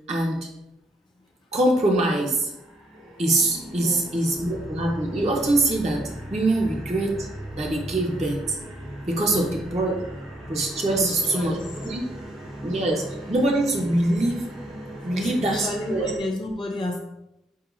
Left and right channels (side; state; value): both; normal; correlation 0.71